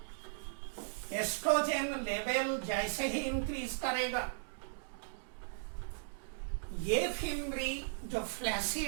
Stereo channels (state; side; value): silent; left; digital silence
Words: एस्ट्रोजन लेवल जैसे ही इंक्रीज करेगा, ये फिमरी जो